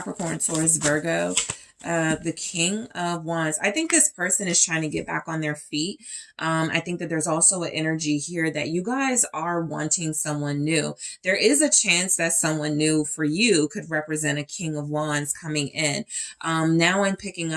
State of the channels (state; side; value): identical; both; correlation 1.00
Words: Taurus, Virgo. The King of Wands. I think this person is trying to get back on their feet. I think that there's also an energy here that you guys are wanting someone new. There is a chance that someone new for you could represent a King of Wands coming in. Now I'm picking